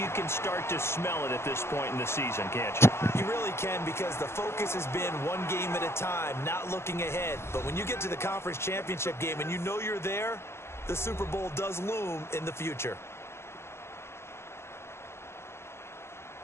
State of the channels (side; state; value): right; late; 0.12 ms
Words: can start to smell it at this point in the season, can't you? You really can, because the focus has been one game at a time, not looking ahead. But when you get to the conference championship game and you know you're there, the Super Bowl does loom in the future.